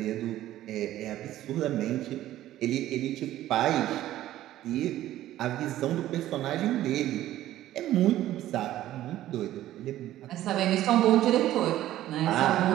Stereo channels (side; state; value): left; quieter; 13.8 dB